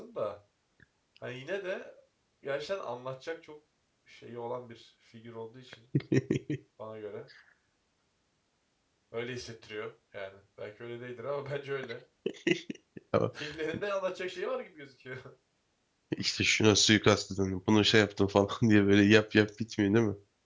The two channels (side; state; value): both; identical; correlation 1.00